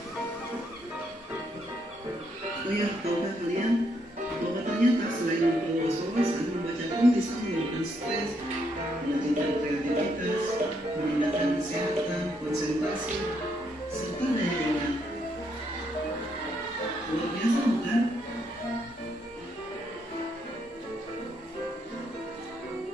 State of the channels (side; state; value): both; normal; correlation 0.75